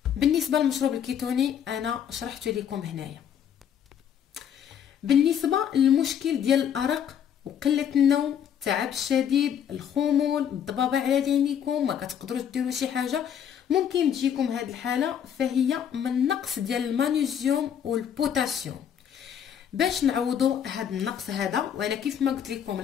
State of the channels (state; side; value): quieter; right; 8.8 dB